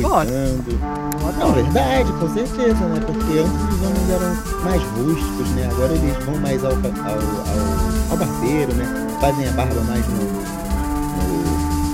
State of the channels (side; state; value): both; identical; correlation 1.00